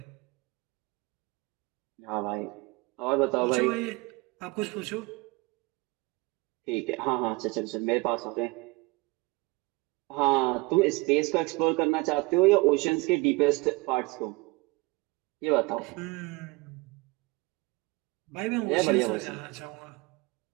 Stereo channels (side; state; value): left; quieter; 24.8 dB